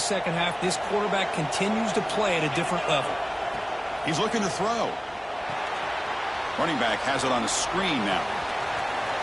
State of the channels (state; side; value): identical; both; correlation 1.00